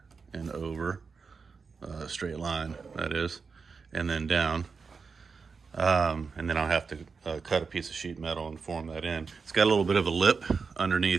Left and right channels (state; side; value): quieter; left; 5.1 dB